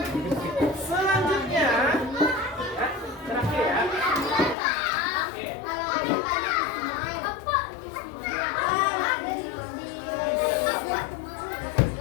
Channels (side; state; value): right; drops out; at 4.5 s